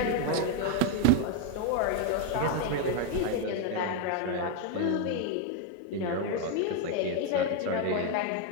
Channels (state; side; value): different; both; correlation 0.00